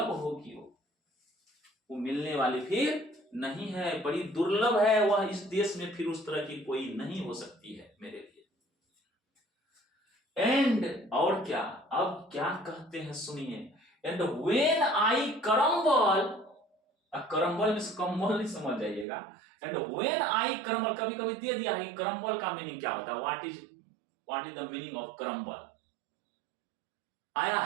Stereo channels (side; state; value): left; drops out; at 19.1 s